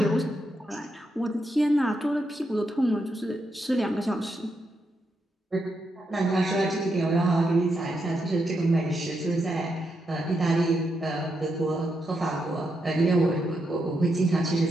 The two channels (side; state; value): both; normal; correlation 0.82